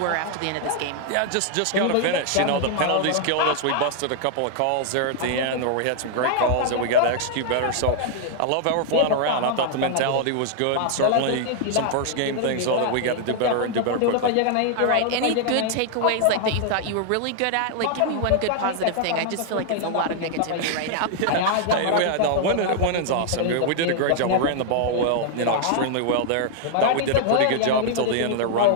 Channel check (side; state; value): both; different; correlation 0.00